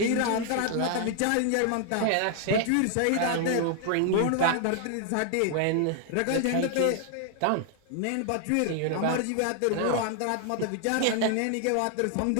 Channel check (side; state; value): both; different; correlation 0.00